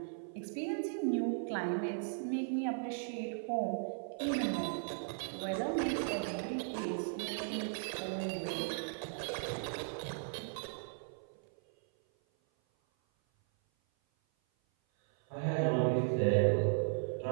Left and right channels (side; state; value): left; silent; 53 dB below the other